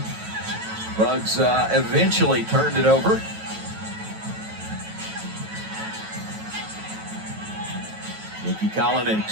Bugs eventually turned it over. Nikki Collin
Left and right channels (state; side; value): late; left; 9.2 ms